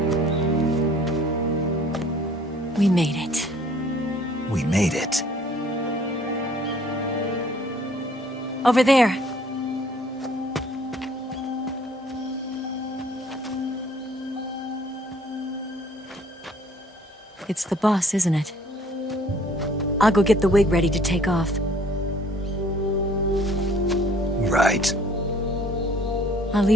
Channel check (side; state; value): both; normal; correlation 0.57